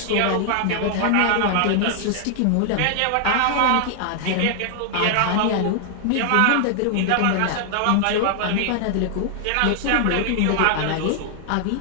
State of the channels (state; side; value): different; both; correlation 0.00